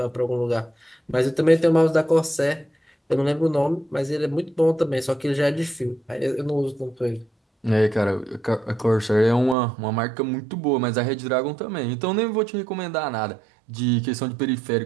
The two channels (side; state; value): left; drops out; at 9.6 s